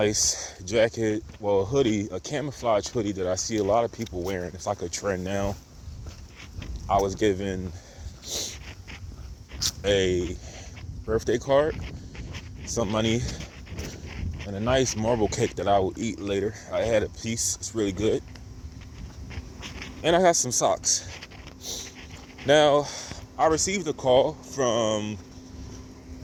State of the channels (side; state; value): both; identical; correlation 1.00